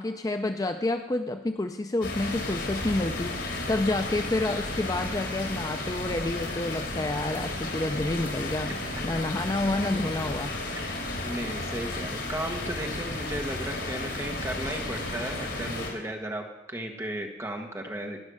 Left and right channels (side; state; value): both; normal; correlation 0.63